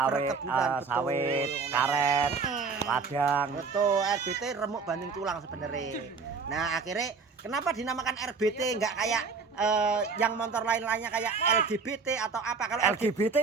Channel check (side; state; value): left; quieter; 4.9 dB